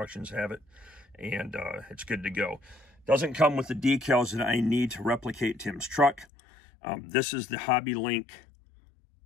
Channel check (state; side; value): drops out; right; at 6.2 s